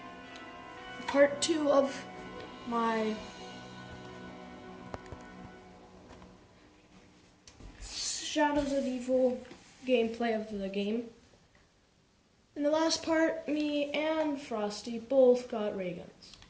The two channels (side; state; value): both; identical; correlation 1.00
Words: part 2 of my Shadows of Evil gameplay of the game. In the last part, me and Frosty both got ray guns.